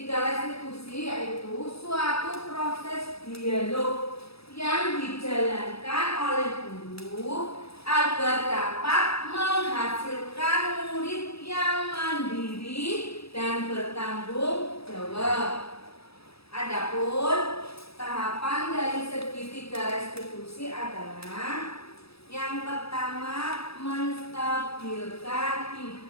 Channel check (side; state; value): right; late; 0.77 ms